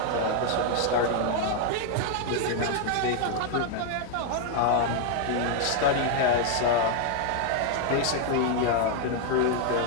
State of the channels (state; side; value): different; both; correlation 0.00